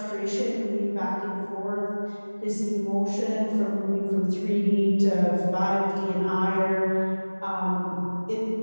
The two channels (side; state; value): both; inverted; correlation -1.00